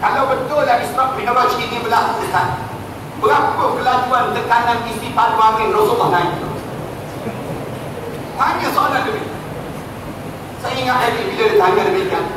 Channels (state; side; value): identical; both; correlation 1.00